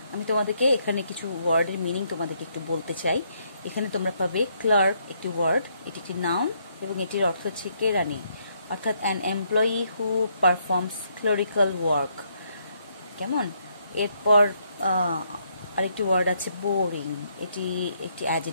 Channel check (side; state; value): both; inverted; correlation -0.73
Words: আমি তোমাদেরকে এখানে কিছু ওয়ার্ডের মিনিং তোমাদেরকে একটু বলতে চাই। এখানে তোমরা পাবে ক্লার্ক, একটি ওয়ার্ড, এটি একটি নাউন এবং এটির অর্থ হচ্ছে কেরানি, অর্থাৎ an employee who performs clerical work. কেমন? এরপর আরেকটি ওয়ার্ড আছে বোরিং, এটি একটি